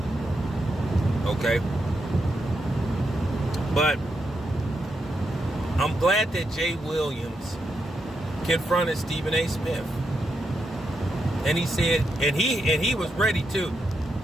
Okay? But I'm glad that Jay Williams confronted Stephen A. Smith. And he said, and he was ready too.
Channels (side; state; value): both; normal; correlation 0.83